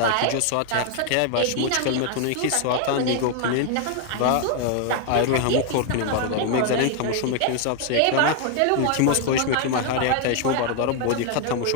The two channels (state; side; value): different; both; correlation 0.00